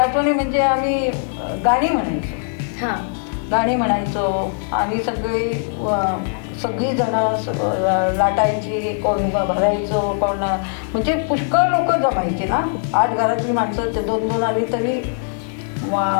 म्हणजे आम्ही गाणी म्हणायचो. गाणी म्हणायचो आणि सगळी जणं लाटायची, कोण भरायचो, कोण म्हणजे पुष्कळ लोक जमायची ना. 8 घरातली माणसं ते 2-2 आली तरी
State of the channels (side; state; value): right; silent; digital silence